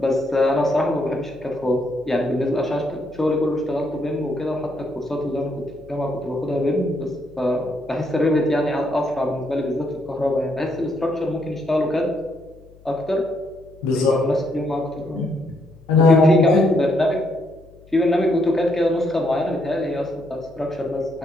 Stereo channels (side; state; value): left; noise; hum, 25 dB below the sound